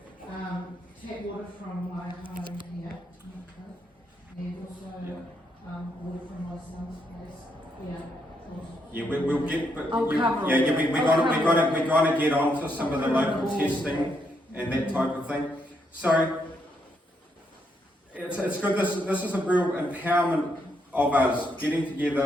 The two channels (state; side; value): normal; both; correlation 0.77